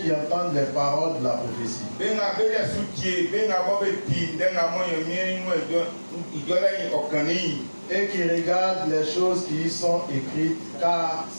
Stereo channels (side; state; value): both; inverted; correlation -1.00